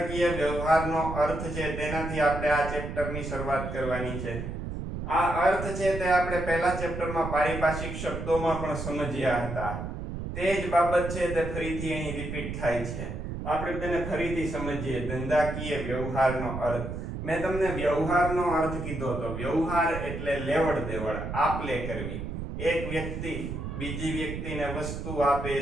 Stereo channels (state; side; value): noise; right; rumble, 6 dB below the sound